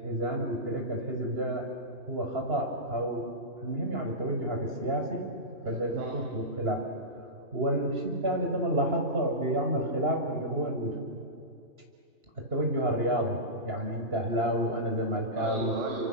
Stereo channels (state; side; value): late; left; 2.9 ms